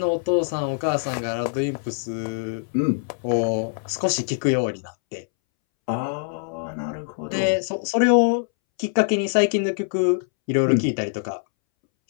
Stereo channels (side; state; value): right; silent; 63 dB below the other